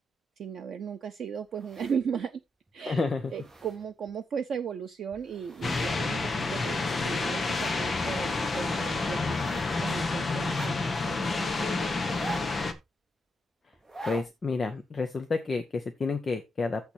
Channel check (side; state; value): both; normal; correlation 0.83